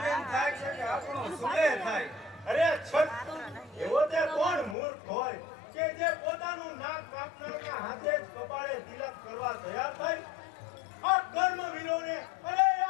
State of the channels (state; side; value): drops out; right; at 4.8 s